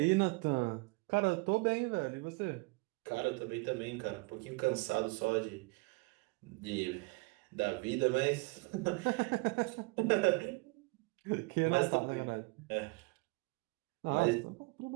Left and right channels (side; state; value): left; quieter; 27.2 dB